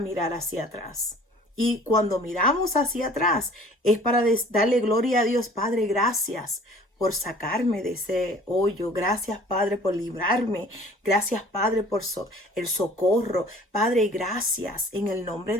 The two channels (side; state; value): both; normal; correlation 0.50